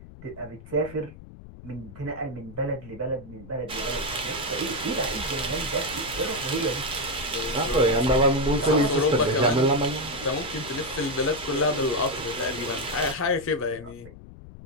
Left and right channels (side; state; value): left; noise; rumble, 17 dB below the sound